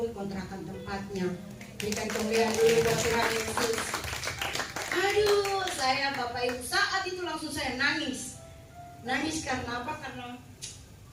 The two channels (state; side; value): identical; both; correlation 1.00